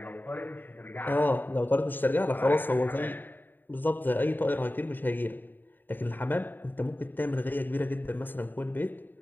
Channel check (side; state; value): right; late; 0.091 ms